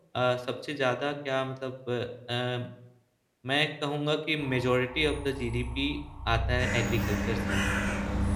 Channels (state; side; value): identical; both; correlation 1.00